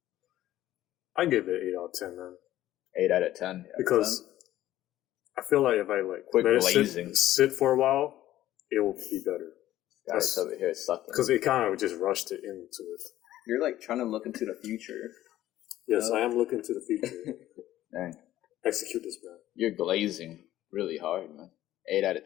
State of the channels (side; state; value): right; quieter; 14.0 dB